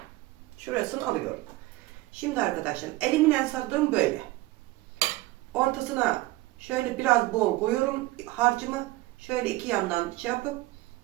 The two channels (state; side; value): quieter; left; 19.1 dB